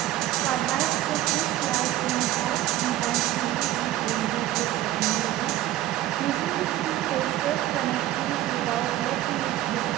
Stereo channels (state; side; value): quieter; left; 14.1 dB